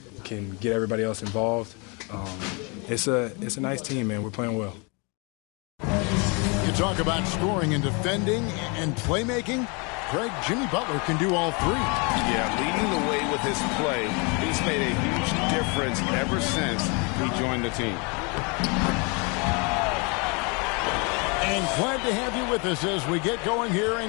can get everybody else involved. It's a nice team, man. We're playing well. You talk about scoring and defending and playmaking. Greg, Jimmy Butler can do all three. Yeah, leading the way with his play. He's made a huge difference ever since he joined the team. And glad to have you with us as we get going here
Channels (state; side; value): quieter; right; 31.5 dB